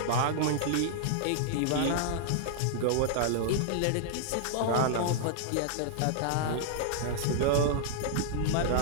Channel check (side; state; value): both; different; correlation -0.01